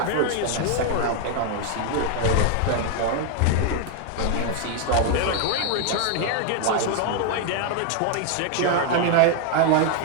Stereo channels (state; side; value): different; both; correlation 0.00